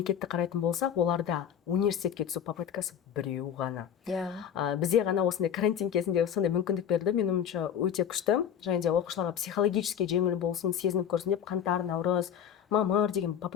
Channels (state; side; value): quieter; right; 8.9 dB